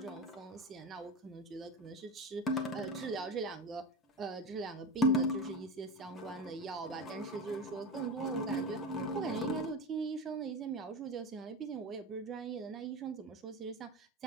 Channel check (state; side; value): normal; both; correlation 0.22